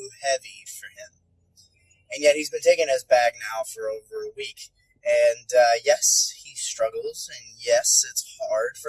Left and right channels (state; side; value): identical; both; correlation 1.00